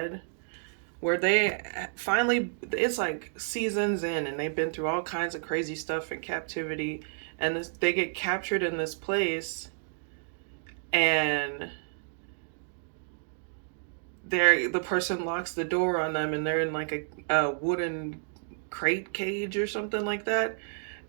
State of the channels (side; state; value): left; silent; digital silence